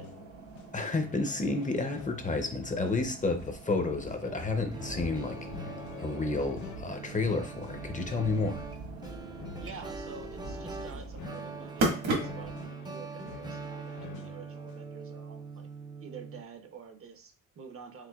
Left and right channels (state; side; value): normal; both; correlation 0.47